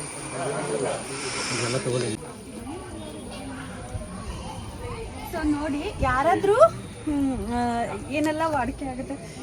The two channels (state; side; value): identical; both; correlation 1.00